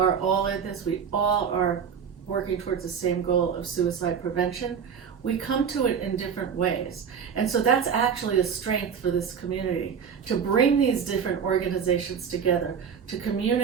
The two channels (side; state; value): left; quieter; 7.1 dB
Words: all in this. We all are working towards the same goal of suicide prevention. We come to it in different ways. And so that's actually a strength for this community, to bring these different organizations together, to